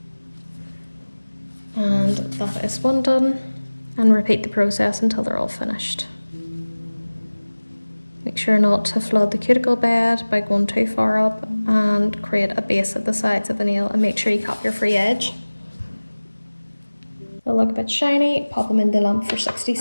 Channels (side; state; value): both; inverted; correlation -1.00